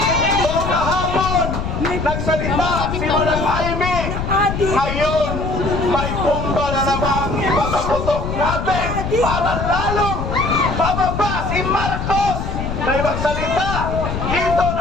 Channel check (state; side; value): noise; left; rumble, 4 dB below the sound